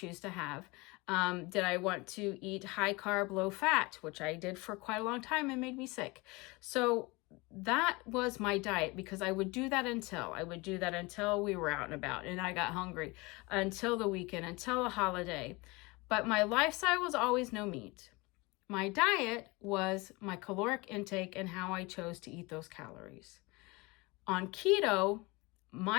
to have? Did I want to eat high carb, low fat, which I did for quite a long time and made me sick. So that was my diet because I would do that until we were out and about and I got hungry, until the weekend, until a holiday. But my lifestyle was always no meat. My diet was my caloric intake and how I chose to eat those calories. On keto,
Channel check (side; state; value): right; quieter; 24.8 dB